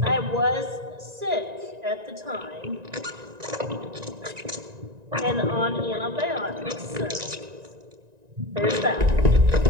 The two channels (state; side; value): late; left; 1.9 ms